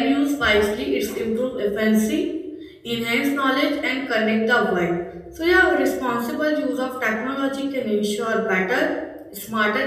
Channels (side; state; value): both; identical; correlation 1.00